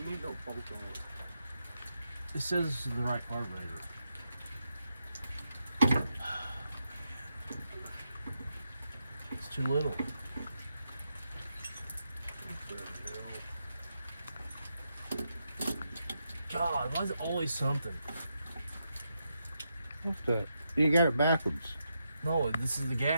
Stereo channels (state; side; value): inverted; both; correlation -0.84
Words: need no bolt on it. It says this is the right carburetor. It's too little. God, why is it always something? What's that? You got it backwards. No, this is the